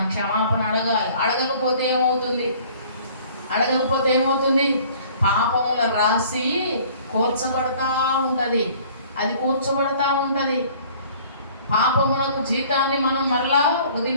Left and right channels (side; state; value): both; inverted; correlation -0.53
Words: క్షమాపణ అడగాలి. అడగకపోతే ఏమవుతుంది? పాపముల రాసి కూర్చబడతా ఉంటుంది. అది కూర్చబడతా ఉంటుంది. పాపములకు జీతాన్ని మనం మళ్ళా